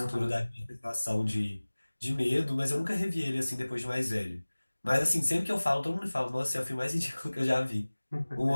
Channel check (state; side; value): inverted; both; correlation -1.00